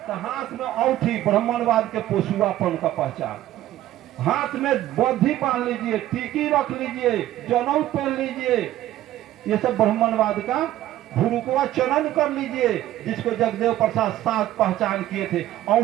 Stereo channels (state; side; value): quieter; left; 13.9 dB